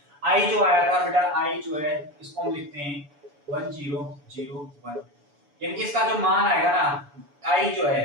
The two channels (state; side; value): late; left; 7.0 ms